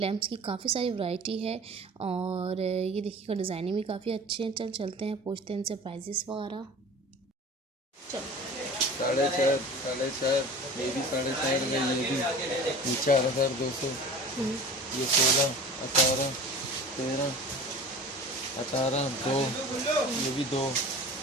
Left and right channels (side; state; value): both; normal; correlation 0.39